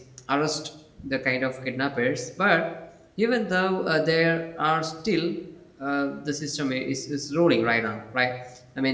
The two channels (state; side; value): identical; both; correlation 1.00